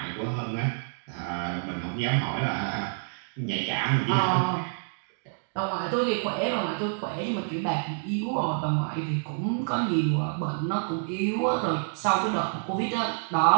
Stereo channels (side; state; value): left; silent; digital silence